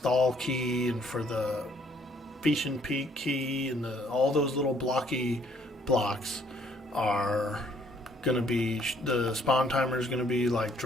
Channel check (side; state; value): both; normal; correlation 0.64